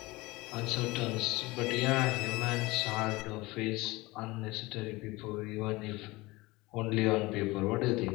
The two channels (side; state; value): right; quieter; 21.7 dB